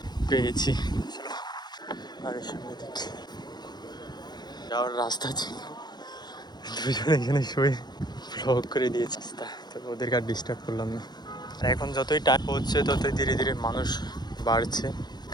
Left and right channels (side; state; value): right; late; 0.20 ms